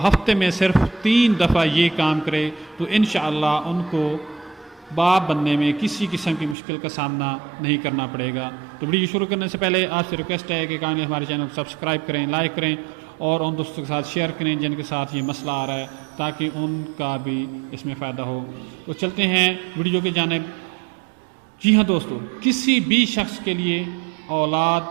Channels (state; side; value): drops out; left; at 6.6 s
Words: ہفتے میں صرف 3 دفعہ یہ کام کرے تو انشاءاللہ ان کو باپ بننے میں کسی قسم کی مشکل کا سامنا نہیں کرنا پڑے گا۔ تو ویڈیو شروع کرنے سے پہلے آپ سے ریکویسٹ ہے کہ کائنڈلی ہمارے چینل کو سبسکرائب کریں، لائک کریں اور ان دوستوں کے ساتھ شیئر کریں جن کے ساتھ یہ مسئلہ آ رہا ہے تاکہ ان کا بھی اس میں فائدہ ہو۔ تو چلتے ہیں ویڈیو کی جانب۔ جی ہاں دوستو، کسی بھی شخص کے لیے